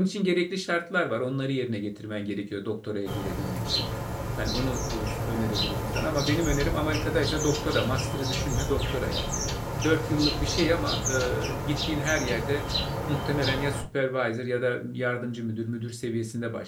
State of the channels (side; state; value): both; identical; correlation 1.00